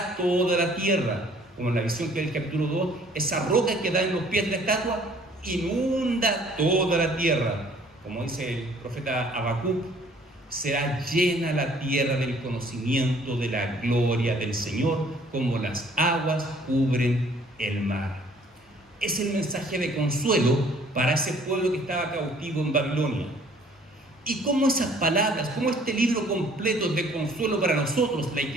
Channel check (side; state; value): both; normal; correlation 0.57